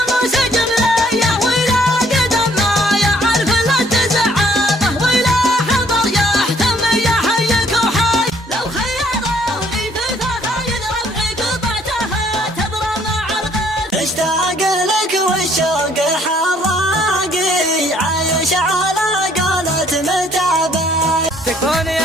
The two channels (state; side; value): normal; both; correlation 0.63